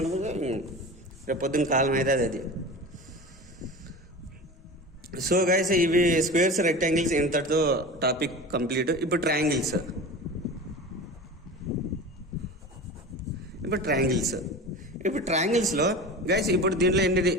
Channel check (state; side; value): normal; both; correlation 0.32